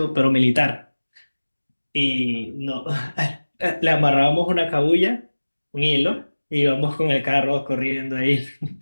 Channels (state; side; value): inverted; both; correlation -1.00